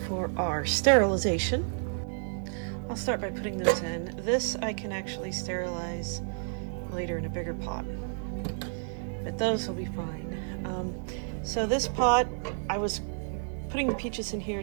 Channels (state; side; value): silent; left; 57 dB below the other